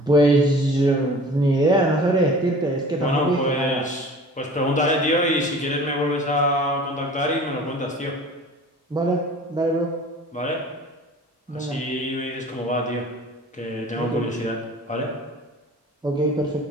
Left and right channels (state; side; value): normal; both; correlation 0.44